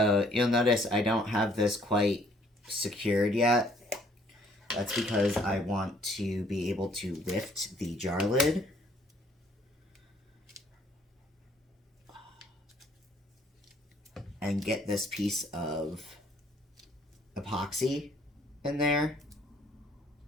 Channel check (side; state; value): both; normal; correlation 0.62